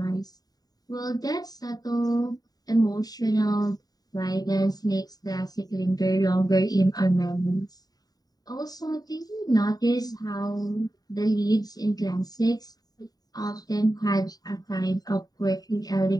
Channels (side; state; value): right; late; 0.18 ms